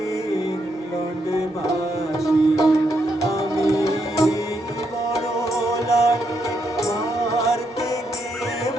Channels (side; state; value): both; normal; correlation 0.79